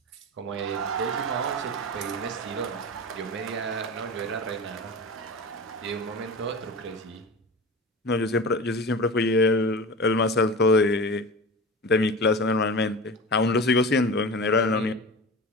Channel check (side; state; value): both; normal; correlation 0.31